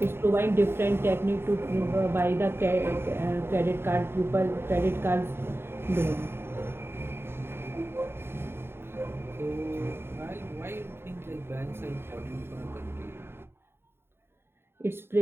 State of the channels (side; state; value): left; late; 0.11 ms